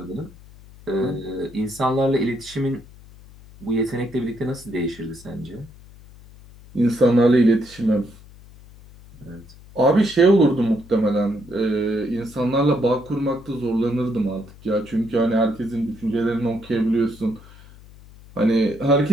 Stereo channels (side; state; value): left; noise; hum, 21 dB below the sound